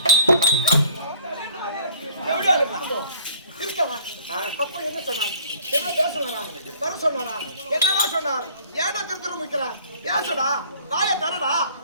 அப்ப என்ன சொன்னார்? என்ன பேசுவாரா? வர சொன்னாரா? என்னடா சொன்னார்? ஏடா திருத்தர முக்கிறா? பேசுடா. வாயை தரடா.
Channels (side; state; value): both; inverted; correlation -0.53